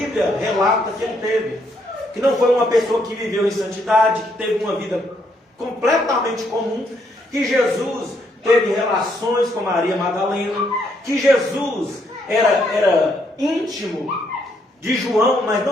relata que ele teve. Que não foi uma pessoa que viveu em santidade, que teve uma vida completamente comum, que Jesus teve relações com Maria Madalena, que Jesus era íntimo de João, mas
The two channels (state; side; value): normal; both; correlation 0.73